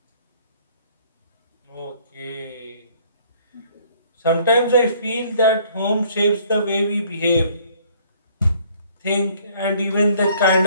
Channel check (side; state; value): both; inverted; correlation -0.60